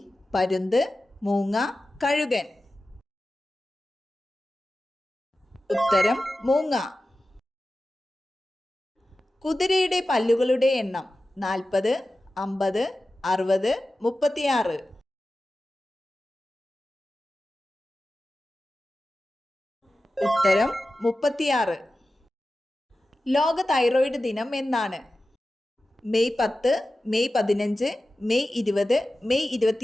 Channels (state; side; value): normal; both; correlation 0.94